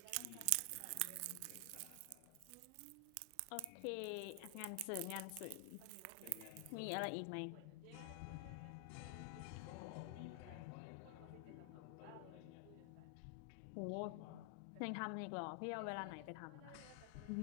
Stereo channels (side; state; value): both; different; correlation 0.00